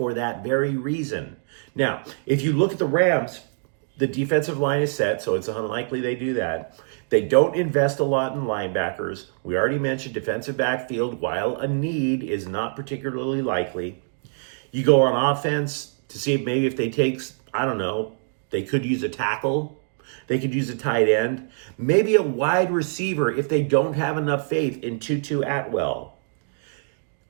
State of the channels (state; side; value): silent; left; digital silence